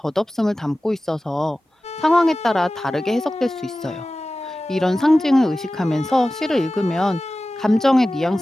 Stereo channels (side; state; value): both; normal; correlation 0.96